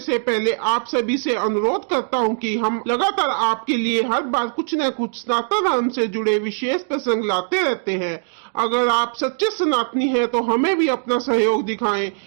पहले आप सभी से अनुरोध करता हूँ कि हम लगातार आपके लिए हर बार कुछ न कुछ सनातन धर्म से जुड़े विशेष प्रसंग लाते रहते हैं। अगर आप सच्चे सनातनी हैं तो हमें भी अपना सहयोग दिखाएं।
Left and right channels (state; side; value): silent; left; digital silence